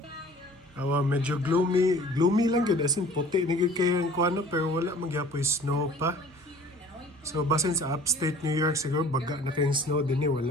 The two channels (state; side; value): normal; both; correlation 0.49